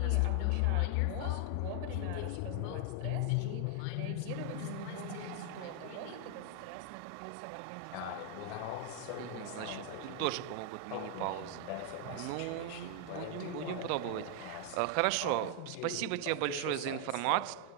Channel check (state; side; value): different; both; correlation 0.00